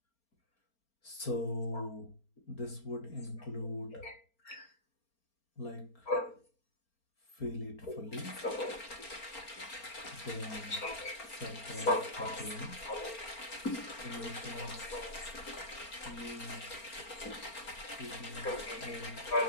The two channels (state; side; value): late; right; 4.4 ms